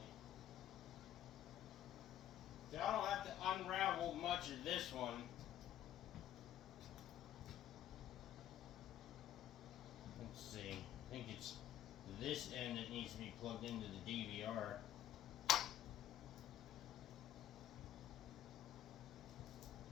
So I don't have to unravel much of this one. Let's see. I think it's this end that needs to be plugged into the DVR.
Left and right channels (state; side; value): quieter; right; 11.9 dB